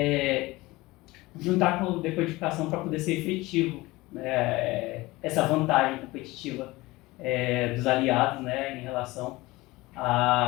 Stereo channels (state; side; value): quieter; right; 20.5 dB